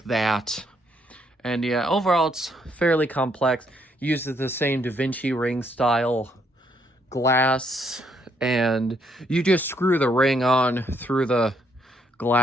that. And yeah, overall it's fairly complex. Uses the same Da Vinci ring style glass, and you just screw the ring on through the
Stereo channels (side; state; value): both; normal; correlation 0.72